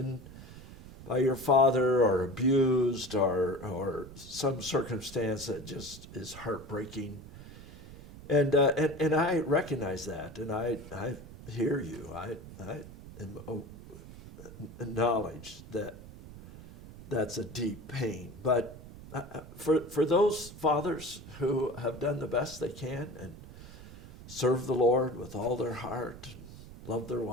by your father or abused or some circumstance that just is heartbreaking. And I recognize that, and I hear you. I acknowledge that that's a deep pain. But for those fathers who have done the best they can and serve the Lord with all their heart, and love their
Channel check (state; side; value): noise; right; rumble, 16 dB below the sound